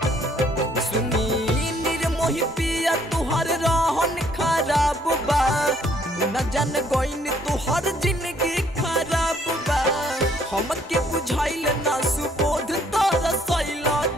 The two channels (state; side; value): normal; both; correlation 0.65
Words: सुनी निर्मोही पिया तुहरे रहन खराब बा मुन्ना जान गोइन तुहर जिंदगी खराब बा हमके बुझाइल ना सुबोध तारा सैला